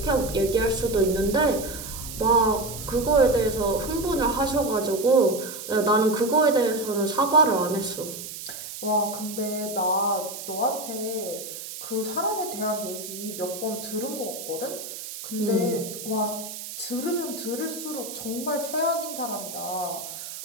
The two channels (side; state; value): right; noise; hiss, 10 dB below the sound